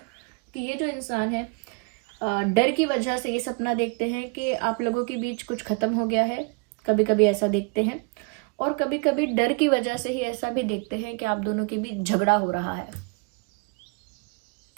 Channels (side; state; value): left; quieter; 32.9 dB